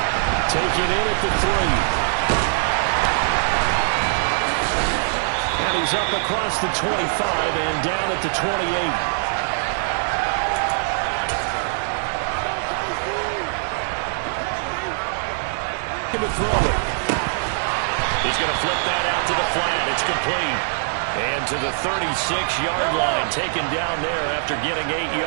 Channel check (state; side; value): silent; left; digital silence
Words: Taking in at the 3. And he's up across the 25 and down at the 28. To throw it. He's going to flip that out to the flat. It's complete. And to the 36-yard line, taken down there after getting 8